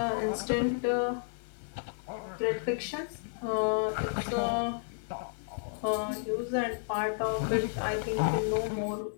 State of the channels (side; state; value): right; silent; digital silence